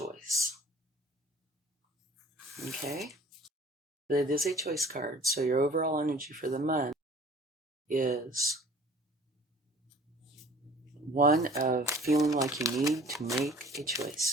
Okay? But it is a choice card, so your overall energy for the month is one of feeling like you need to make a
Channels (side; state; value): both; normal; correlation 0.49